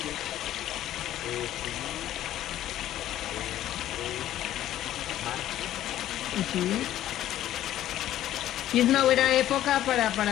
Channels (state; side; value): quieter; right; 12.8 dB